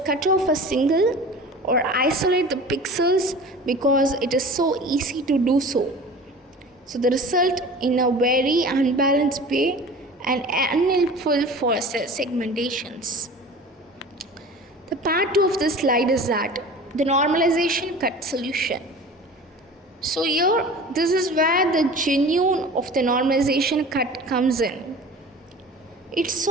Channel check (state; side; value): normal; both; correlation 0.39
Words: cut off a single or isolate the pixels because it is so easy to do so. So the result in a very unbalanced way and unhelpful for segmentations. The part 2 of this slide is that the normalization cut solution. So here, this is where the genuine of the normalization cut comes in. It